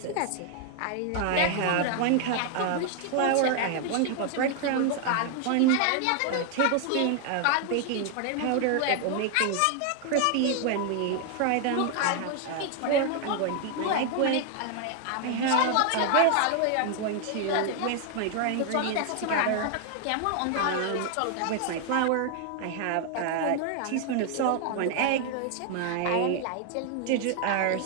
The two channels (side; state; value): both; different; correlation 0.00